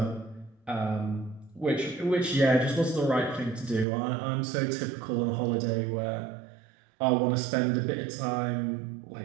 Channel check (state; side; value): drops out; left; at 3.9 s